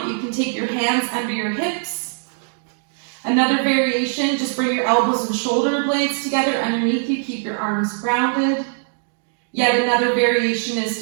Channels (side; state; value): left; silent; 65 dB below the other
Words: you can take your hands under your hips. Another variation, just bring your elbows and shoulder blades together underneath you. Keep your arms grounded. Yet another variation